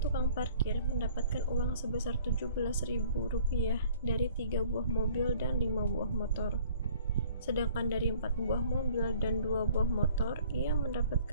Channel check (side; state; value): both; inverted; correlation -0.54